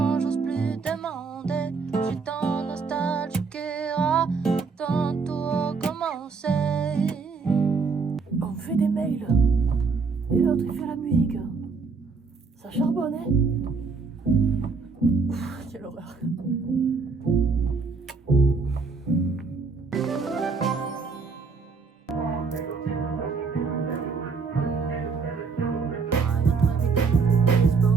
j'ose plus demander. Je suis tant nostalgique et quand tout recommencer. On me fait des mails. Et l'autre il fait la musique. Ça charbonne, hein? Quelle horreur.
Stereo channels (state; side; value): quieter; left; 4.8 dB